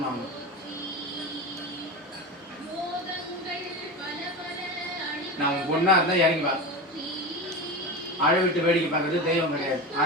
அவங்க நான் உன் பொண்ணா இருந்தா இறங்கி வா. அழை விட்டு வேடிக்கை பார்க்கறது தெய்வம் கிடையாது,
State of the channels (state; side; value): normal; both; correlation 0.25